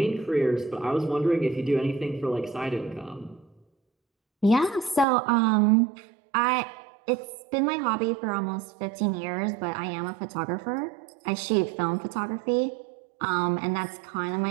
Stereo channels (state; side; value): drops out; left; at 5.1 s